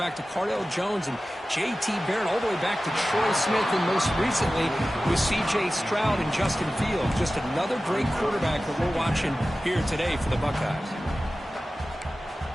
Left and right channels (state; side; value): normal; both; correlation 0.95